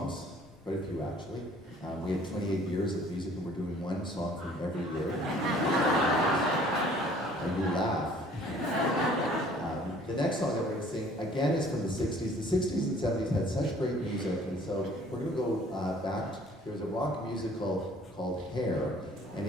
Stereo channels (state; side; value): normal; both; correlation 0.55